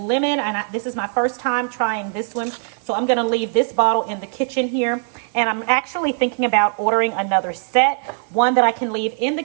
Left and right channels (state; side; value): silent; left; 57 dB below the other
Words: Lemon, and this is my first time trying this one. So I'm going to leave this bottle in the kitchen here. And I'm actually thinking about ordering another set. 1 that I can leave in the